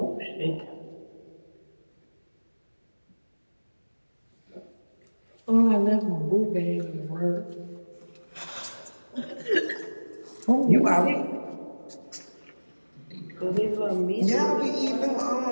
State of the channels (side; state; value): both; inverted; correlation -1.00